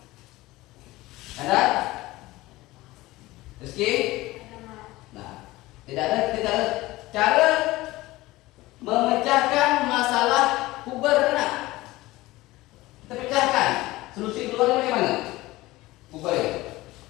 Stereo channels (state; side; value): quieter; right; 18.8 dB